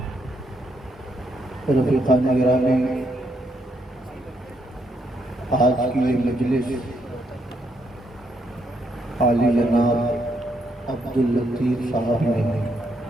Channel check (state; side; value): normal; both; correlation 0.76